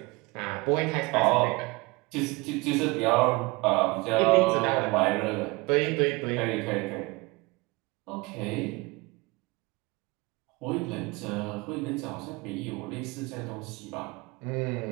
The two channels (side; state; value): left; quieter; 24.4 dB